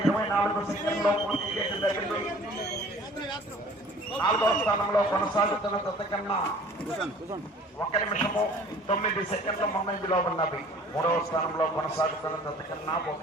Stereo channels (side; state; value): both; normal; correlation 0.50